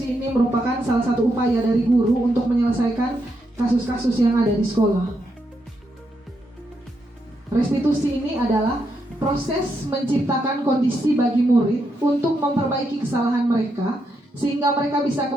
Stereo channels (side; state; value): both; normal; correlation 0.81